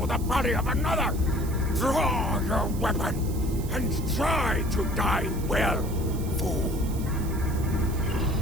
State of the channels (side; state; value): right; noise; hiss, 16 dB below the sound